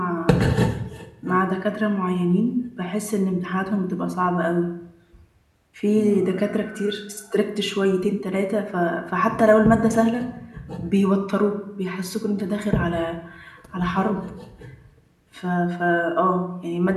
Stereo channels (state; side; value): identical; both; correlation 1.00